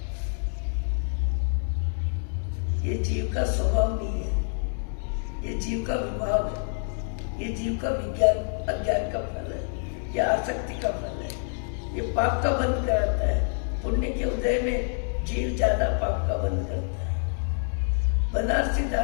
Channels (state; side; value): silent; right; 60 dB below the other